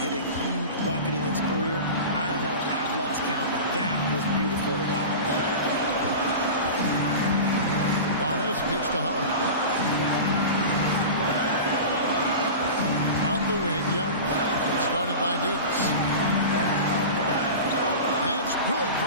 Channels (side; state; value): both; inverted; correlation -0.31